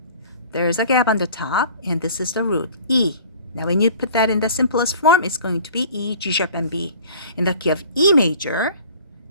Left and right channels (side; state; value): both; inverted; correlation -0.47